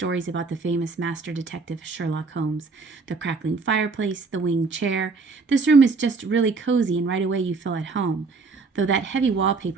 about the famous master detective Sherlock Holmes. The crackling fireplace, the winged chair. This room is just really cozy and right away you feel at home, though that heavy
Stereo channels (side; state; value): left; quieter; 4.3 dB